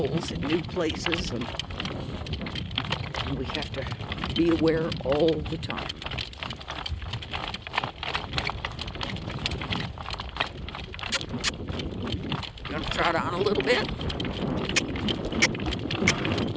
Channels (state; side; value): identical; both; correlation 1.00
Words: in new places, and we have to be aware all the time. Gonna trot on a little bit.